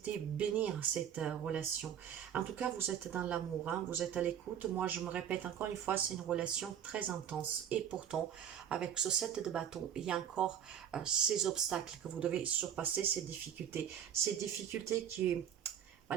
bénir cette relation. En tout cas, vous êtes dans l'amour, hein, vous êtes à l'écoute. Moi, je me répète encore une fois, c'est une relation très intense. Et pourtant, avec ce 7 de bâton, il y a encore ces obstacles que vous devez surpasser, ces difficultés qui,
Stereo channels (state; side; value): quieter; left; 9.2 dB